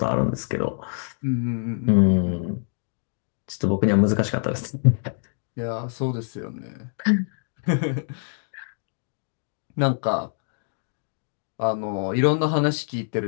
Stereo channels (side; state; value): right; silent; digital silence